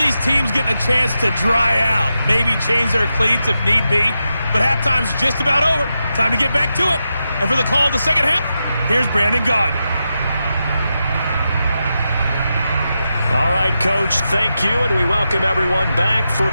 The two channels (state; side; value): inverted; both; correlation -0.88